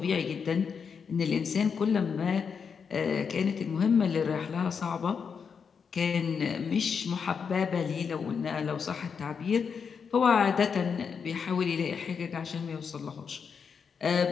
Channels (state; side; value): quieter; right; 6.2 dB